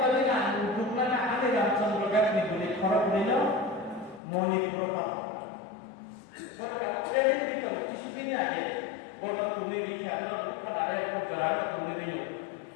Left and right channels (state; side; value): drops out; right; at 4.2 s